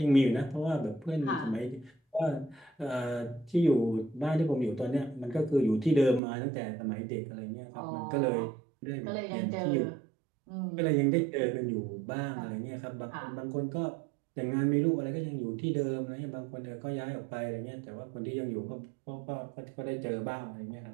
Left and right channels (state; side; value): drops out; left; at 6.2 s